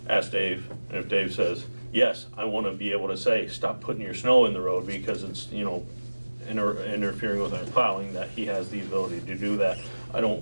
ask Dave, and if Dave says, yes, I want to be able to say, stop putting your snow in the road because it's, you know, interfering with our plowing, that he has the ability to do that. I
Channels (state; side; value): inverted; both; correlation -1.00